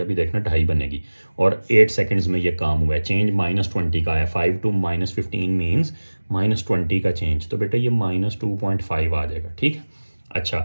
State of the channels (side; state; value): both; inverted; correlation -1.00